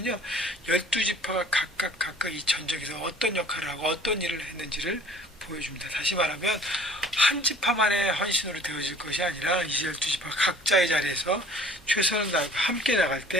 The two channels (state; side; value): normal; both; correlation 0.50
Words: 12지파가 각각 이 전적에서 어떤 역할을 하고 어떤 일을 했는지를 보여줍니다. 다시 말하면 한 지파만의 헌신으로 되어질 것이 아니라 이 12지파 각자의 자리에서 최선을 다하고 함께 나갈